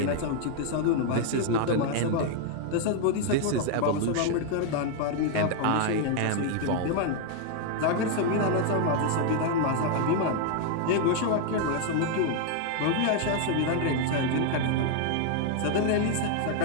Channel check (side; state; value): both; different; correlation 0.00